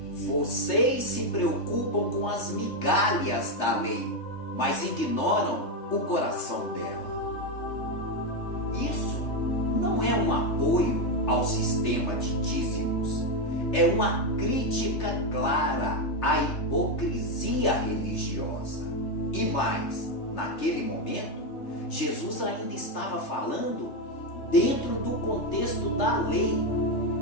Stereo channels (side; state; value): right; late; 3.4 ms